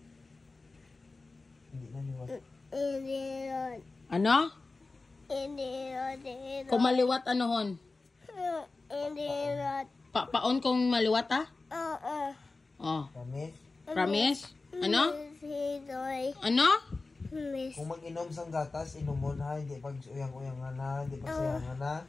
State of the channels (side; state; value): right; quieter; 3.6 dB